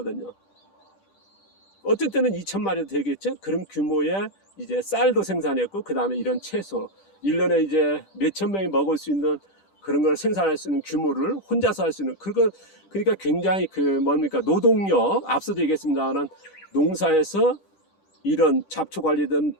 어떤 때는 2,000마리도 되겠죠? 그런 규모의 이제 쌀도 생산했고, 그 다음에 이런 채소, 1년에 이제 몇천 명이 먹을 수 있는 그런 걸 생산할 수 있는 규모를 혼자서 할 수 있는 그걸 그러니까 굉장히 뭡니까 노동력 앞서도 얘기했습니다만 농사에서 이런 잡초 관리든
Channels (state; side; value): late; right; 10 ms